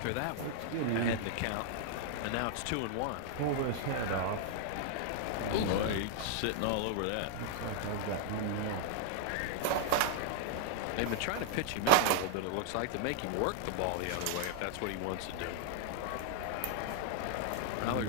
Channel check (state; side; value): different; both; correlation -0.01